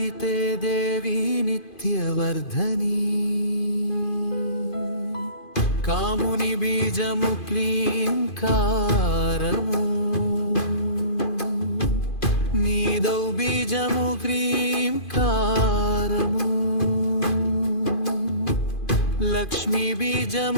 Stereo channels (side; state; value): right; late; 2.5 ms